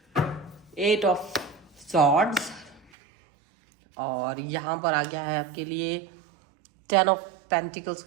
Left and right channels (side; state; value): left; drops out; at 2.9 s